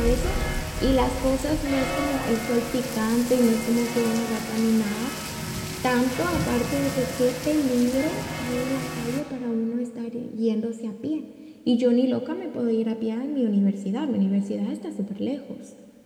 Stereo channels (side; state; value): both; identical; correlation 1.00